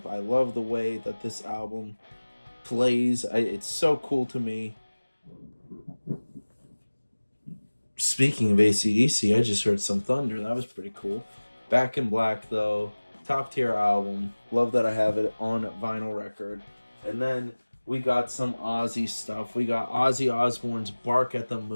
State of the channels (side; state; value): both; inverted; correlation -1.00